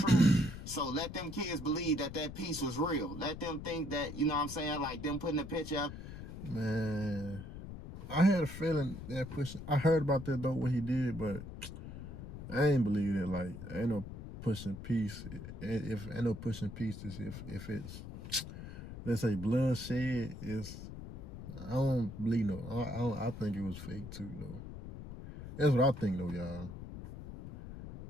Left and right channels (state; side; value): noise; left; rumble, 10 dB below the sound